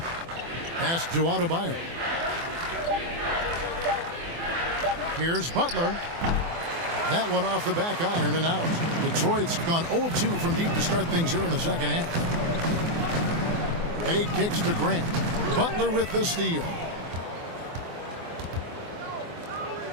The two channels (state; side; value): late; left; 24 ms